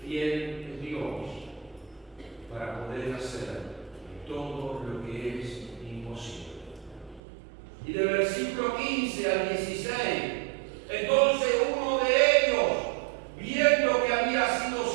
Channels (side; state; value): left; drops out; at 7.2 s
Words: Fiel es Dios para poder hacer todo lo que es imposible. Y del versículo 15 al 16, entonces uno de ellos, viendo que había sido